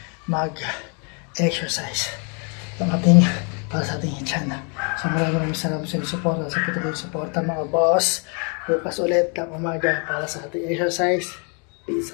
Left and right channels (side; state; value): right; quieter; 36.9 dB